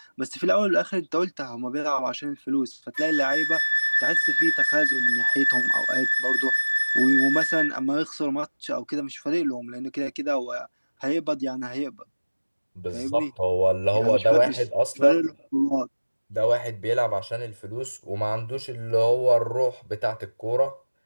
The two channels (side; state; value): both; inverted; correlation -1.00